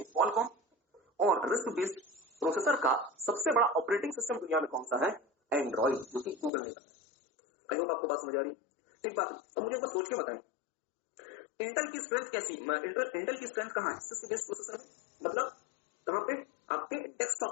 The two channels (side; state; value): right; drops out; at 6.5 s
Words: क्वालकॉम। और रिस्क बेस्ड प्रोसेसर का सबसे बड़ा ऑपरेटिंग सिस्टम दुनिया में कौन सा है? एंड्रॉइड, जो कि गूगल ने बनाया। आई होप आपको बात समझ आ रही है, ठीक बात है। अब मुझे एक बात सोच के बताएं, इंटेल की स्ट्रेंथ कैसी? इंटेल की स्ट्रेंथ कहां है? सिस्क बेस्ड प्रोसेसर में, मतलब कहां पे? आपके डेस्कटॉप